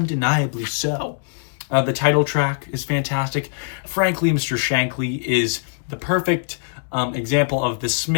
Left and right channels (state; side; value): silent; right; 64 dB below the other